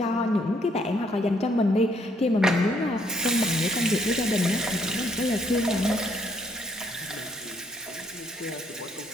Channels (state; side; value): normal; both; correlation 0.69